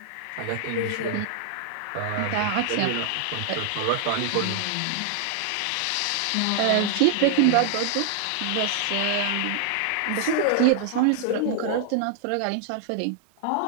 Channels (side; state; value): both; different; correlation 0.00